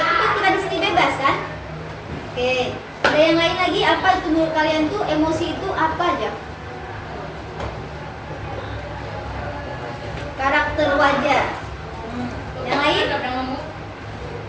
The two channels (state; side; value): identical; both; correlation 1.00